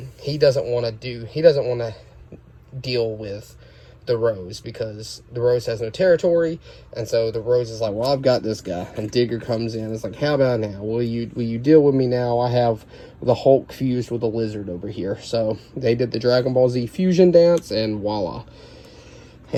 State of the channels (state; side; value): identical; both; correlation 1.00